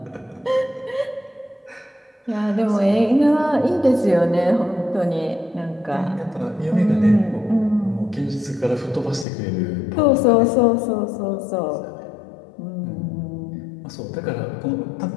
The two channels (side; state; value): right; drops out; at 9.2 s